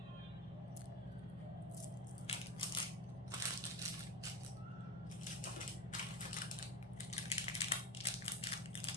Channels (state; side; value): normal; both; correlation 0.23